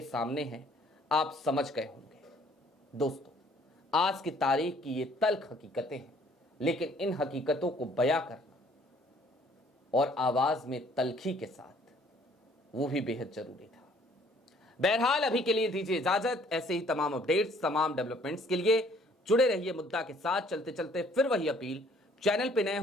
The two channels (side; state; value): both; normal; correlation 0.60